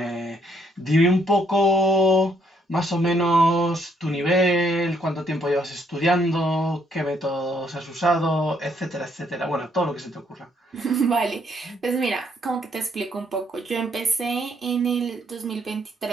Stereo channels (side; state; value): both; normal; correlation 0.70